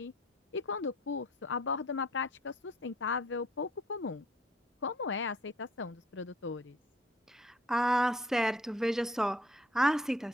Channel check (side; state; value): both; normal; correlation 0.58